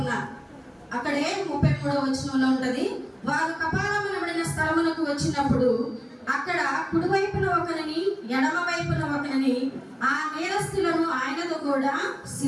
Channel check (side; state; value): both; identical; correlation 1.00